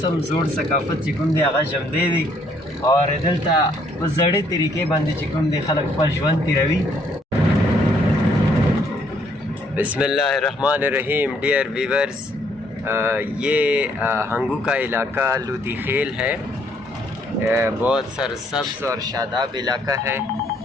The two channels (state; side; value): normal; both; correlation 0.67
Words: هم زوړ ثقافت چې کوم دی هغه ژوندی دی او دلته په زړې طریقې باندې چې کوم دی خلک خپل ژوند تېروي. بسم اللہ الرحمن الرحیم. ڈیئر ویورز، یہ ہنگو کا علاقہ لودی خیل ہے. بہت سرسبز اور شاداب علاقہ ہے